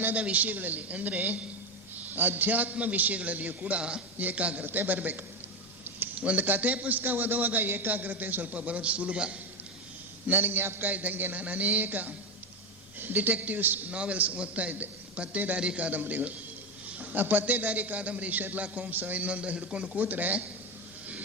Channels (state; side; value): normal; both; correlation 0.13